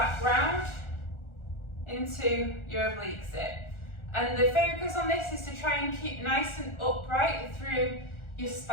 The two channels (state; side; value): late; right; 1.4 ms